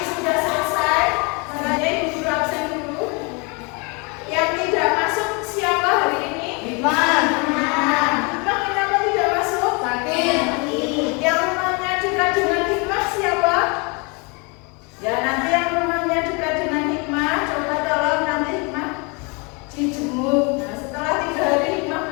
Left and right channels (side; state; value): right; quieter; 31.0 dB